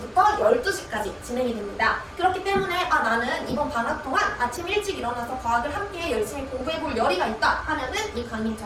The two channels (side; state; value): both; identical; correlation 1.00